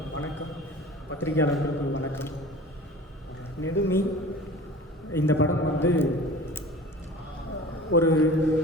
பத்திரிகையாளர்களுக்கு வணக்கம். நெடுமி இந்த படம் வந்து ஒரு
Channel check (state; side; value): normal; both; correlation 0.40